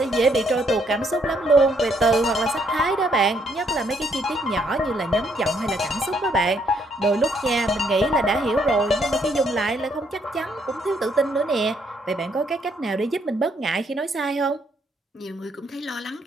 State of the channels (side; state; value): both; normal; correlation 0.71